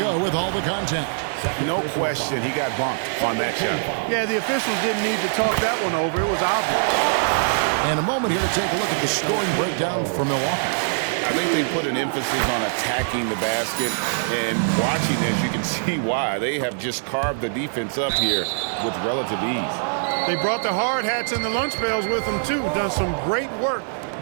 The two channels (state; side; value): silent; left; digital silence